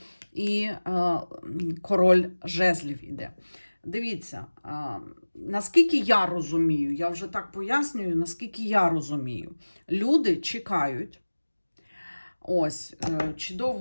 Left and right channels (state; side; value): inverted; both; correlation -1.00